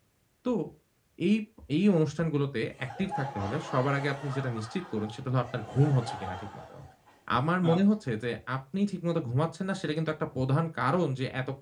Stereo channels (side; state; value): both; identical; correlation 1.00